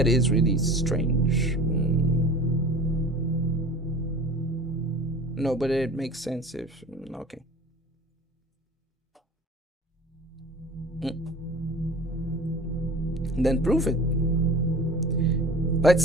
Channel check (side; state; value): both; normal; correlation 0.40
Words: is really strange. No, but it makes sense if... okay. Then prove it.